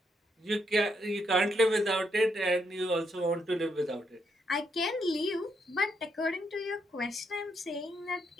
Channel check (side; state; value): both; normal; correlation 0.77